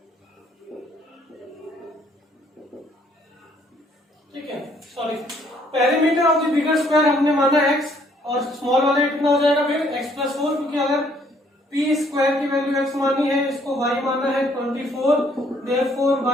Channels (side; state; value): both; normal; correlation 0.64